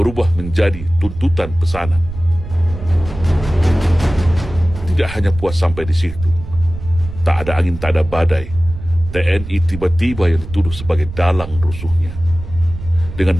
menjadi tuntutan pesanan. Tidak hanya puas sampai di situ, tak ada angin tak ada badai, TNI tiba-tiba yang dituduh sebagai dalang rusuhnya.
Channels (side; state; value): right; noise; rumble, 11 dB below the sound